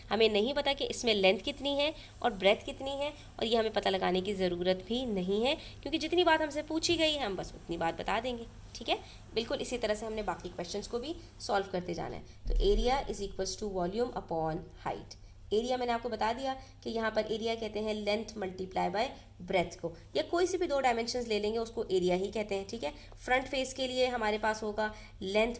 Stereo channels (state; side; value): identical; both; correlation 1.00